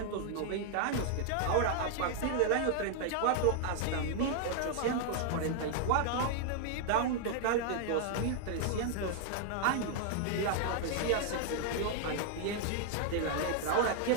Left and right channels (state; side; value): different; both; correlation 0.00